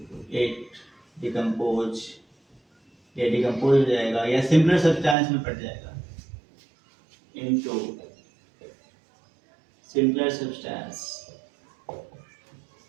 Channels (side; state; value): left; drops out; at 5.2 s